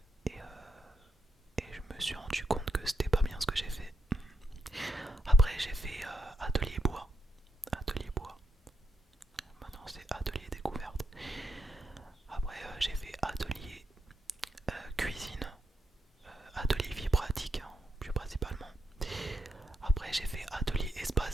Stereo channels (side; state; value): both; normal; correlation 0.82